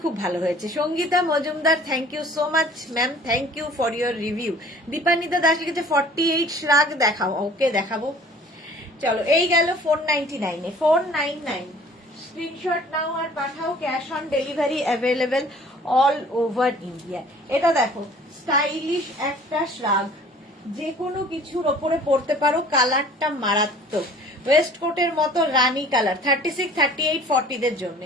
খুব ভালো হয়েছে। Sangeeta Majumdar, thank you so much ma'am, thank you for your review. Dipanwita Das লিখেছে 48 শ্রাগ দেখাও, ওকে দেখাবো। চলো এই গেল 499 এ। 499 স্ক্রিনশট নাও আর পাঠাও, cash on delivery available all over India. এটা দেখো স্টাইলিশ একটা শ্রাগ, যে কোনো কিছুর ওপরে পরতে পারো, কালারটা মারাত্মক, ওয়েস্ট কোটের মতো রানী কালার। 36, 38, 40 দের জন্য,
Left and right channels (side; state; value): both; normal; correlation 0.50